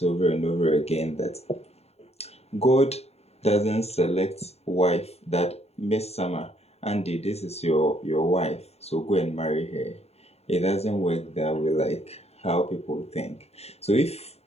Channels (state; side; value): late; right; 0.30 ms